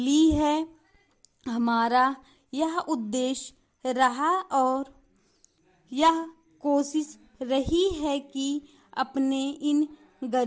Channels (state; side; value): identical; both; correlation 1.00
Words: है। हमारा यह उद्देश्य रहा और यह कोशिश रही है कि अपने इन